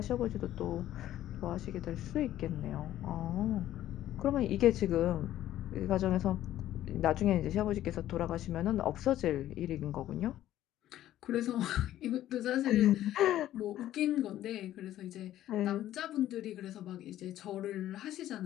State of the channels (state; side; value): quieter; right; 13.0 dB